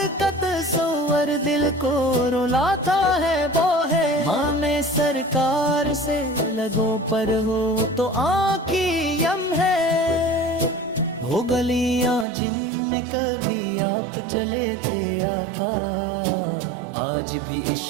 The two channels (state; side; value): drops out; left; at 12.2 s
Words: کا تصور دل کو رلاتا ہے، وہ ہے مام سرکار سے لگوں پر ہو تو آنکھی یم ہے۔ وہ گلیاں جن میں کبھی آپ چلے تھے آقا، آج بھی